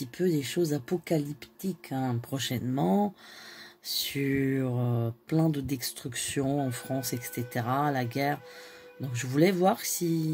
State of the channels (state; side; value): identical; both; correlation 1.00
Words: peu des choses apocalyptiques prochainement, sur plein de destructions en France, etc., la guerre. Donc je voulais voir